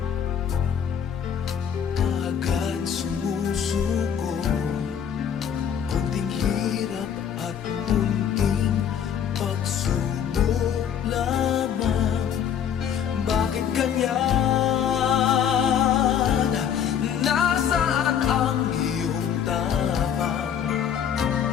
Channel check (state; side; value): quieter; right; 8.5 dB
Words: kaagad sumusuko. Kunting hirap at munting pagsubok lamang. Bakit ganyan? Nasaan ang iyong tapang?